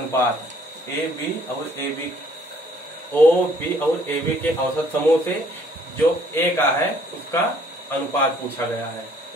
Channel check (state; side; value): normal; both; correlation 0.61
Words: ए बी और ए बी, ओ बी और ए बी के औसत समूह से जो ए का है उसका अनुपात पूछा गया है।